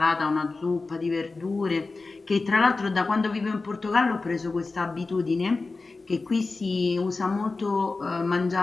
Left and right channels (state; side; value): quieter; right; 3.7 dB